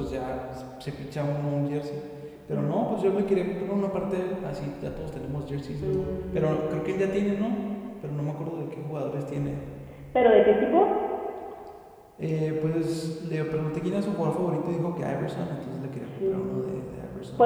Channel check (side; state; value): both; identical; correlation 1.00